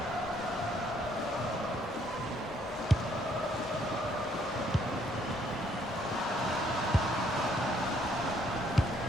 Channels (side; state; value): both; normal; correlation 0.67